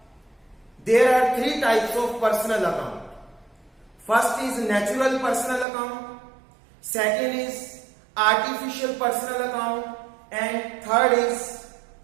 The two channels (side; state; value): left; drops out; at 5.7 s